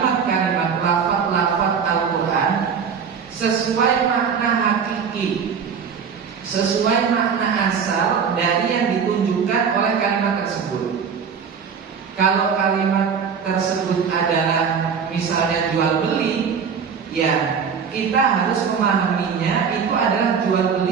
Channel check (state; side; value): quieter; left; 6.6 dB